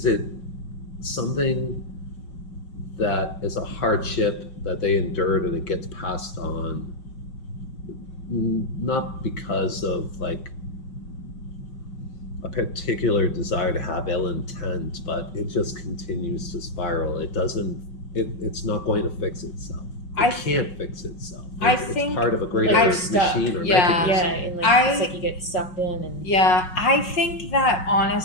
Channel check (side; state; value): right; late; 5.5 ms